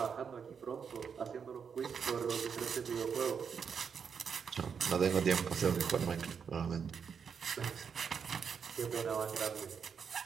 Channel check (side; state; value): left; quieter; 6.6 dB